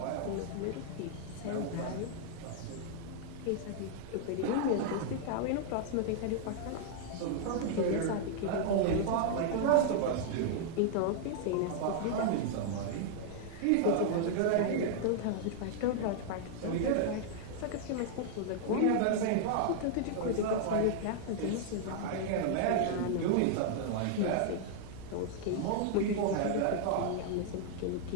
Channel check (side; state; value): both; different; correlation -0.01